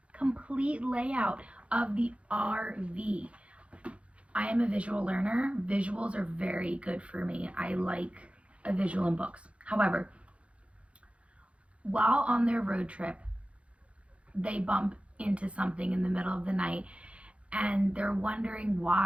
complete layout of the RV. I am a visual learner. Visuals are very good for me. I like a visual in books. However, while on their road trip, they bump into something in the middle of the night and they're wondering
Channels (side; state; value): left; late; 0.062 ms